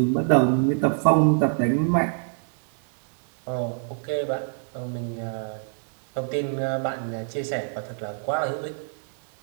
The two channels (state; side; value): silent; left; digital silence